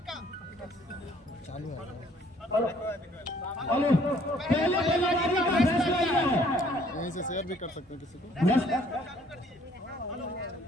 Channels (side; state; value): both; normal; correlation 0.60